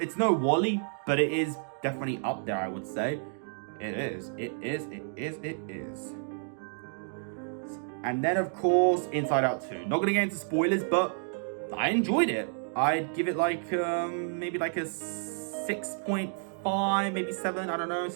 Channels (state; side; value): silent; left; 58 dB below the other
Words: Wall-E, but it is definitely up there, I would say. It is. And then, of course, Inside Out 2. Not gonna get into spoilers, but I enjoyed it. I'd give it like, maybe like a 6.5, maybe 7, I don't know,